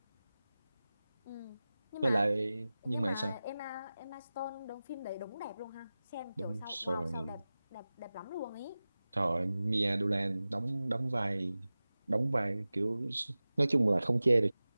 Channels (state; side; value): inverted; both; correlation -0.96